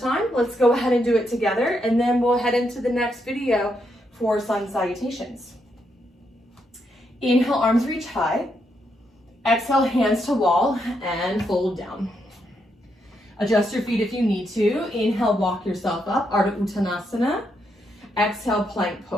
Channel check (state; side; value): normal; both; correlation 0.79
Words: let's go ahead and do it together, and then we'll head into the next video for sun salutations. Inhale, arms reach high. Exhale, hands to wall and fold down. Adjust your feet if you need to. Inhale, walk yourself up, Ardha Uttanasana. Exhale, plank